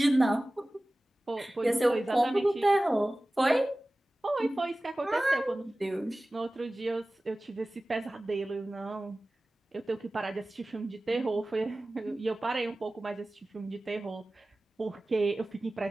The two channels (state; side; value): normal; both; correlation 0.97